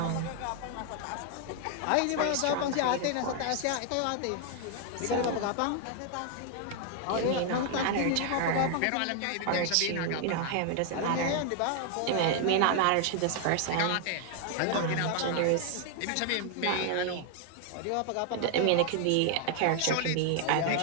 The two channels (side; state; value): both; different; correlation 0.00